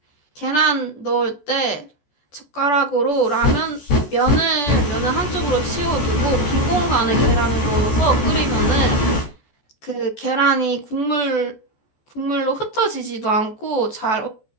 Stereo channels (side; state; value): right; late; 14 ms